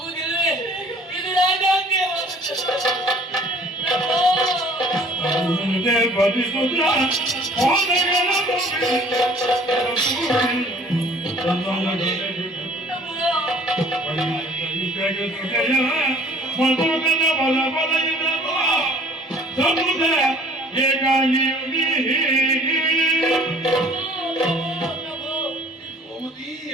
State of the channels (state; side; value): normal; both; correlation 0.53